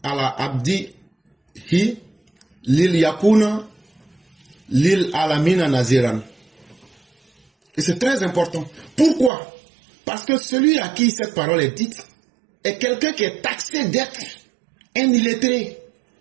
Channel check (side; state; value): left; drops out; at 9.3 s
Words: ala abdi hi lil yakuna lil alamina naziran. Et c'est très important. Pourquoi? Parce que celui à qui cette parole est dite est quelqu'un qui est taxé d'être un illettré.